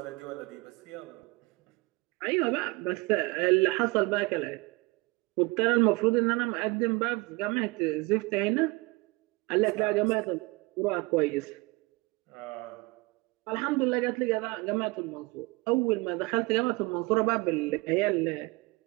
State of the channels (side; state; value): left; quieter; 24.6 dB